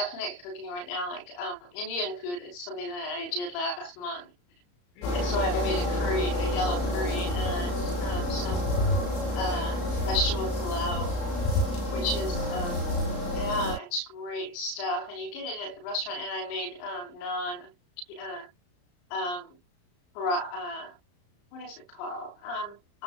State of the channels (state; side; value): late; right; 34 ms